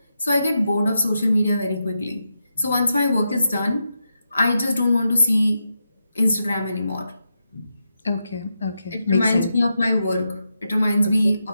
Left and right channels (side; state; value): both; inverted; correlation -0.86